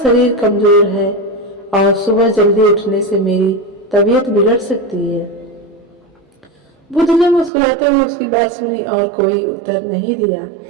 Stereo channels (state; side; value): drops out; left; at 7.5 s